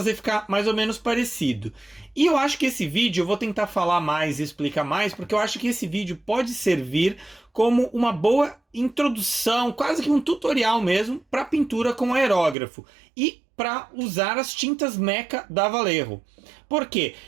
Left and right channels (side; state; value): left; drops out; at 12.6 s